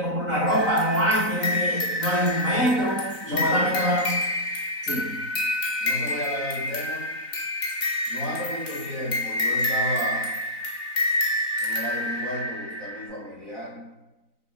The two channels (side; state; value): right; late; 4.0 ms